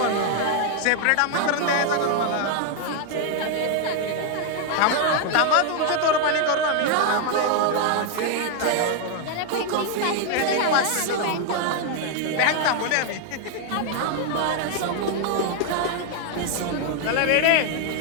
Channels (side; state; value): both; different; correlation 0.00